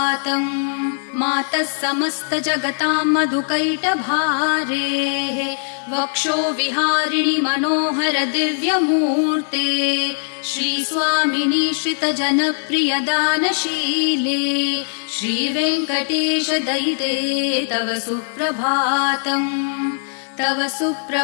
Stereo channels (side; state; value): right; silent; 66 dB below the other